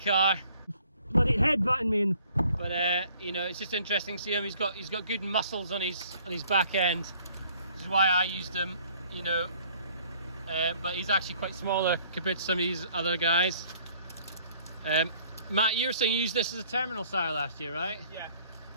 Bloody headbutting me, but you know, it's just interesting to see him. He's got good muscles on his back end. This is why I used him, you know. But he's actually quite smaller compared to some of these other guys. Matt, you were saying you used this as a terminal sire last year, right? Yeah.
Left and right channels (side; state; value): both; inverted; correlation -0.58